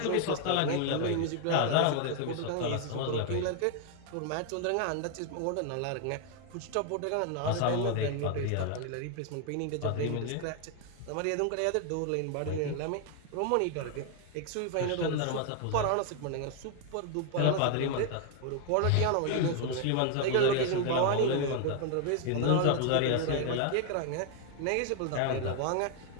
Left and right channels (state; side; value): different; both; correlation 0.00